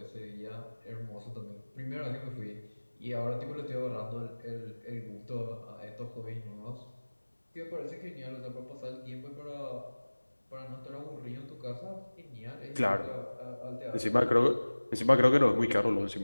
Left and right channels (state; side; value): inverted; both; correlation -1.00